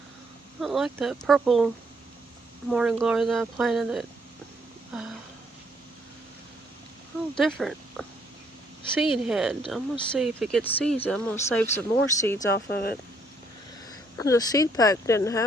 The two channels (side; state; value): both; normal; correlation 0.68